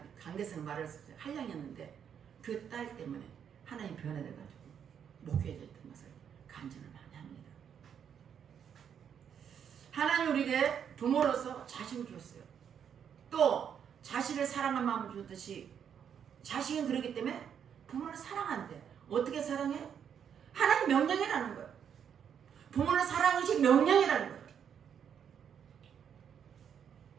강대성 말을 했어요. 한량했는데 그 딸 때문에 하나님 변화돼가지고 목회자였던 것을 간증을 많이 합니다. 하나님 우리에게 부모로서 자식을 줬어요. 또 자식을 사랑하는 마음을 줬듯이 자식은 그러기 때문에 부모를 사랑한대. 어떻게 사랑해? 하나님 명령이라는 거예요. 부모를 사랑하는 것이 명령이라는 거예요.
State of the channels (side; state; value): left; quieter; 8.1 dB